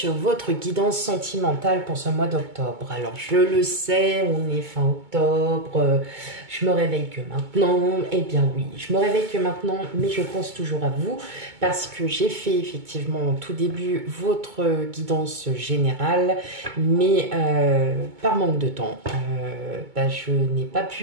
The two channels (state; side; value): late; left; 2.2 ms